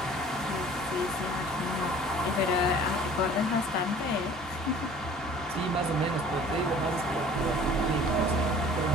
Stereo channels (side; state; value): both; normal; correlation 0.48